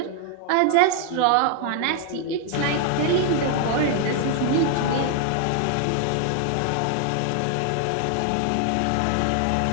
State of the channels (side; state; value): both; different; correlation 0.00